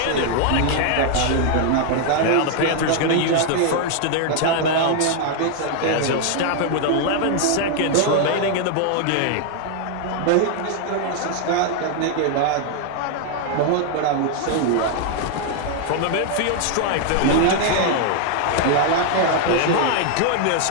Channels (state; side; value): different; both; correlation 0.00